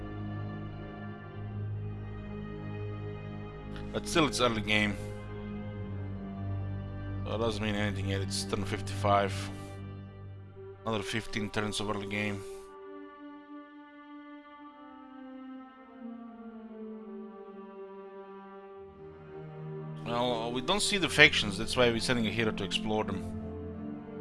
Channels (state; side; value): identical; both; correlation 1.00